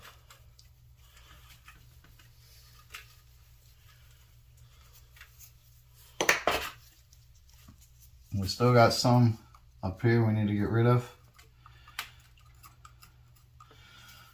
We still got some up here we need to get rid of.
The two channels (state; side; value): identical; both; correlation 1.00